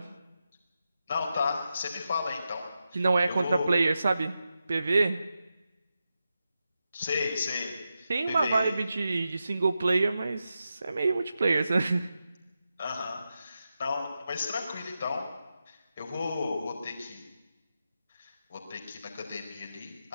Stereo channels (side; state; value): both; inverted; correlation -0.89